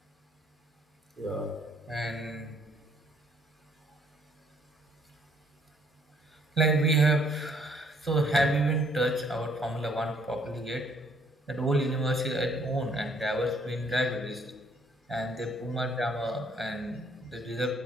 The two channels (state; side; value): normal; both; correlation 0.64